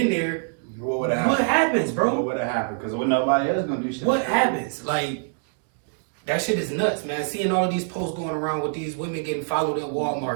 there, What would have happened? what happens, bro? What would have happened? Because when nobody else gonna do shit. What happens? Like, that shit is nuts, man. Seeing all of these posts going around with these women getting followed in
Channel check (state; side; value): silent; left; digital silence